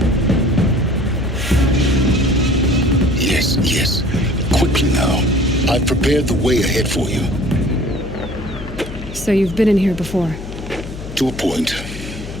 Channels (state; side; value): noise; left; hum, 11 dB below the sound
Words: Yes. Quickly now. I've prepared the way ahead for you. So you've been in here before? To a point.